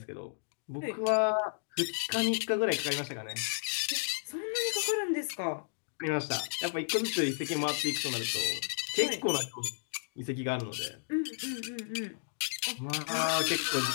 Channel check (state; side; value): silent; right; digital silence